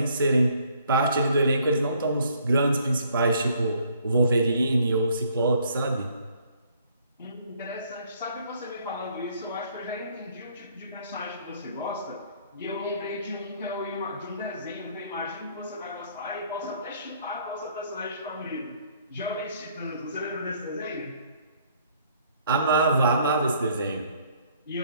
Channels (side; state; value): both; inverted; correlation -0.63